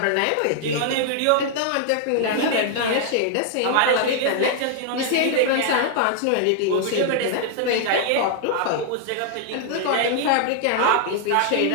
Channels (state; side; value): different; both; correlation 0.00